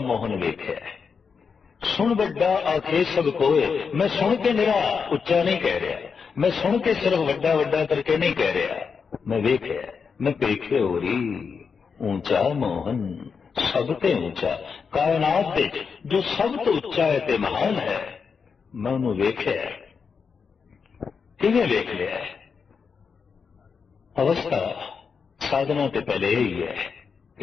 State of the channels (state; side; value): quieter; right; 5.8 dB